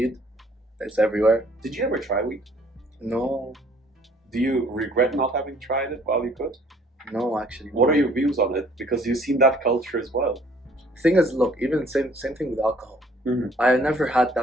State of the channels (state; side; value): normal; both; correlation 0.59